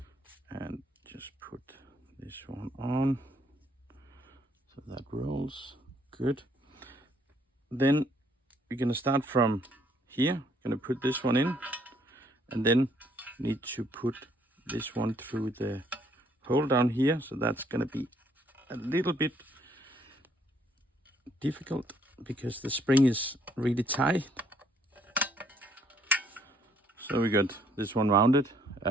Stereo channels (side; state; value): both; normal; correlation 0.66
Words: and just put this one on so that rolls good. Then we're going to start from here. Going to put this one in, and then need to put this one through the hole down here. So that's going to be a little bit difficult because the spring is really tight. So we got this one mounted.